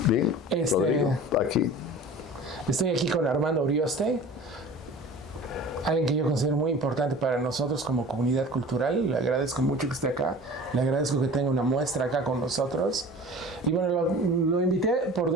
Bien, Rodrigo, aquí. Estoy aquí con Armando Urioste, alguien que yo considero muy importante para nosotros como comunidad cultural. Le agradezco mucho que esté acá, le agradezco que tenga una muestra acá con nosotros. Y bueno, lo invité por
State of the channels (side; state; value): both; normal; correlation 0.41